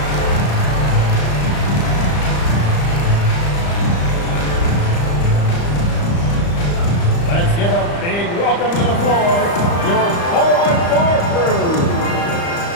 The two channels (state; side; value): late; right; 35 ms